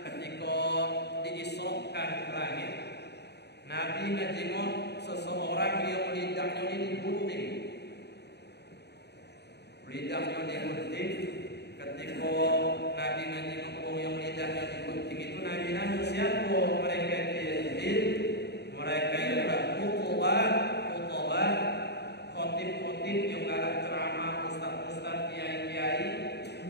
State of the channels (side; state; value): right; late; 0.49 ms